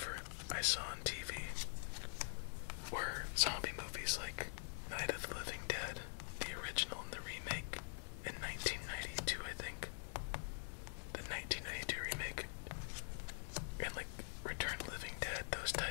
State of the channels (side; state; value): right; silent; digital silence